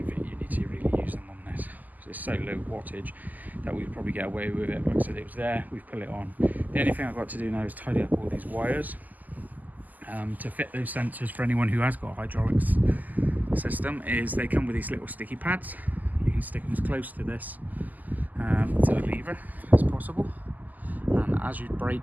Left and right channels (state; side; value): late; left; 0.082 ms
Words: think you need to really use them on this. it's so low wattage that we'd probably get away with it. Like I said, it was there, we've put it on. The only thing I've got to do now is tidy up all these wires to fit those sensors. For anyone who has got a hydraulics system, is they come with these little sticky pads. You can stick them as close to this to the lever as possible, and as you